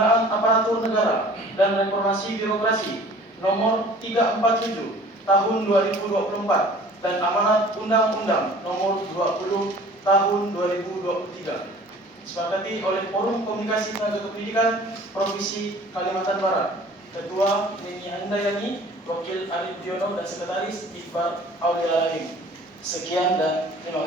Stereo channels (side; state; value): both; normal; correlation 0.48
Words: Aparatur Negara dan Reformasi Birokrasi nomor 347 tahun 2024 dan amanat Undang-Undang nomor 20 tahun 2023. Disepakati oleh Forum Komunikasi Tenaga Kependidikan Provinsi Kalimantan Barat. Ketua Neni Handayani, Wakil Arif Diono, dan Sekretaris Iqbal Aulialalim. Sekian dan